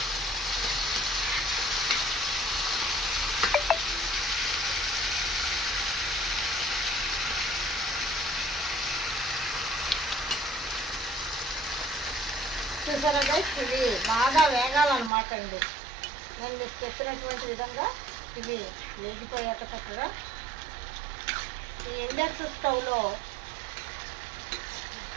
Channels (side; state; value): left; drops out; at 15.1 s